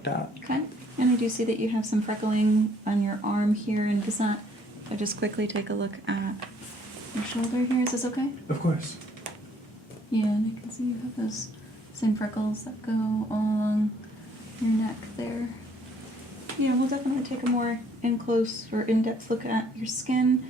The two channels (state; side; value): normal; both; correlation 0.63